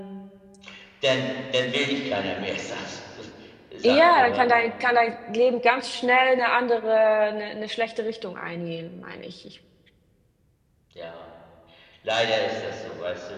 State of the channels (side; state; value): both; identical; correlation 1.00